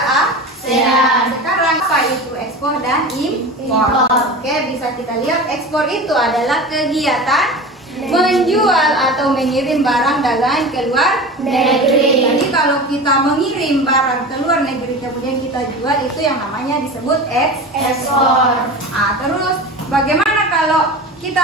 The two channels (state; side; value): normal; both; correlation 0.31